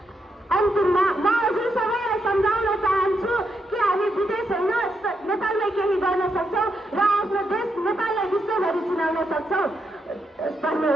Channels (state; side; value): normal; both; correlation 0.81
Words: अन्तिममा म हजुर सबैलाई सम्झाउन चाहन्छु कि हामी विदेश होइन, नेपालमै केही गर्न सक्छौँ र आफ्नो देश नेपाललाई विश्वभरि चिनाउन सक्छौँ।